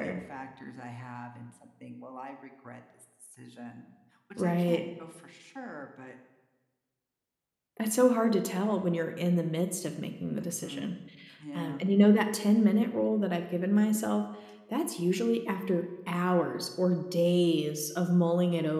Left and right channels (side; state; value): both; identical; correlation 1.00